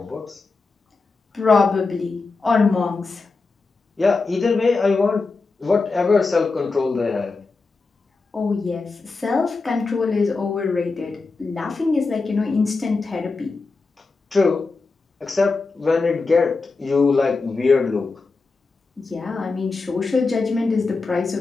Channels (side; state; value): right; quieter; 4.0 dB